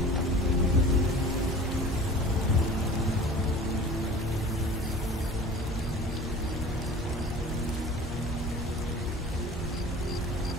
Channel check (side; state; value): both; normal; correlation 0.42